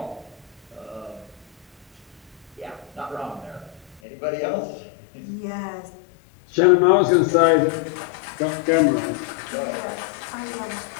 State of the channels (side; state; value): right; drops out; at 4.0 s